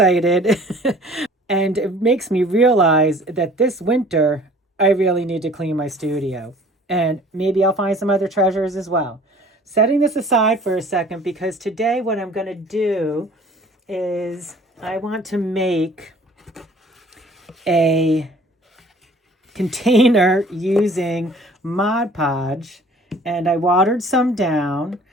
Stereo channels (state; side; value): normal; both; correlation 0.50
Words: And it makes me realize that this winter, I really need to clean my studio. And maybe I'll find some other treasures as well. Setting this aside for a second, because today what I'm going to do is I want to make a container using Mod Podge, and I watered some down.